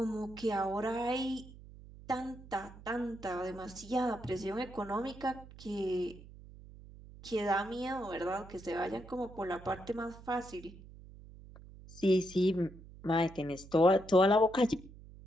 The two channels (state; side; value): noise; right; hum, 18 dB below the sound